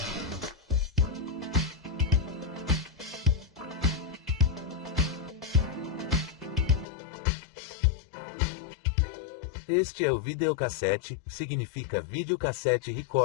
Este é o videocassete, significa videocassete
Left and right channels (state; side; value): drops out; right; at 6.9 s